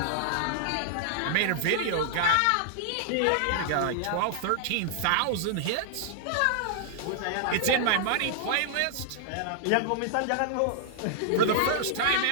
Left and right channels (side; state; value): both; different; correlation -0.01